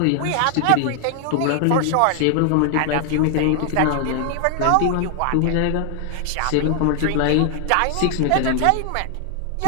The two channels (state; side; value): different; both; correlation 0.00